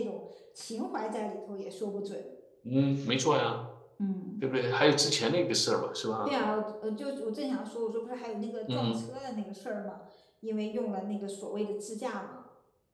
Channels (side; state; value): both; identical; correlation 1.00